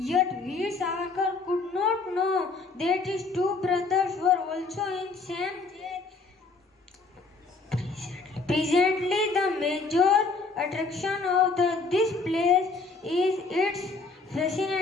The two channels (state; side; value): quieter; right; 3.9 dB